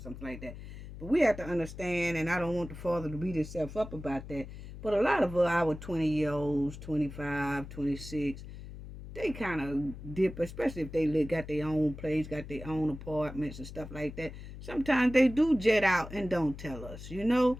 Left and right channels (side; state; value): left; noise; hum, 12 dB below the sound